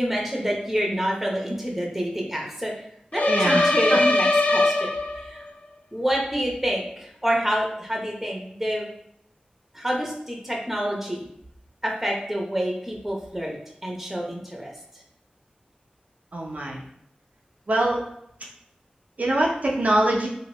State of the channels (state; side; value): normal; both; correlation 0.89